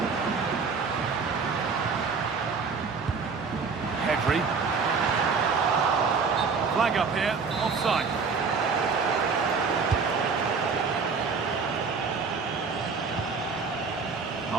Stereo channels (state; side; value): quieter; left; 5.1 dB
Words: Pedri. Flag up here, offside.